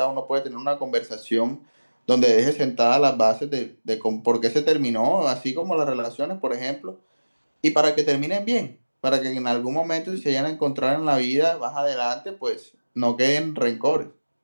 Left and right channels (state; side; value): inverted; both; correlation -1.00